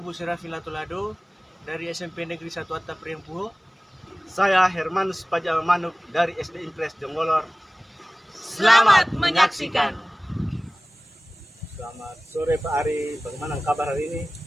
Rafilatulado dari SMP Negeri 1 Atta Priampuho. Saya Hermanus Pajamanuk dari SD Impres Jonggolor. Selamat menyaksikan. Selamat sore Pak Ari, bagaimana kabar hari ini?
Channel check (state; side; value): normal; both; correlation 0.98